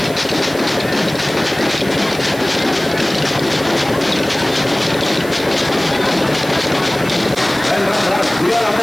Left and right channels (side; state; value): right; noise; hiss, 16 dB below the sound